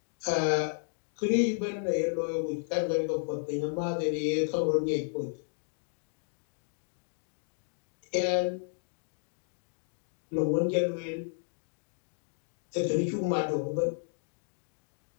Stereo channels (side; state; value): right; silent; digital silence